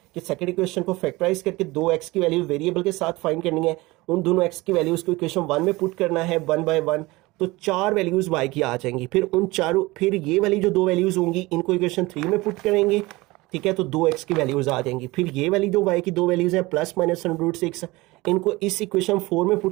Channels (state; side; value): quieter; left; 21.4 dB